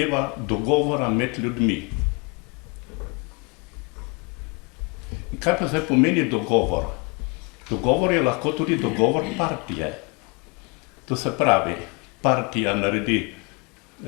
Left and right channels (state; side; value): quieter; right; 31.0 dB